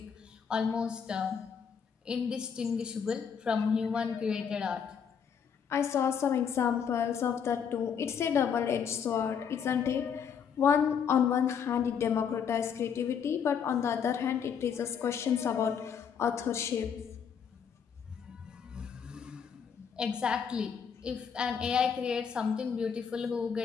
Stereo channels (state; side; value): quieter; right; 7.2 dB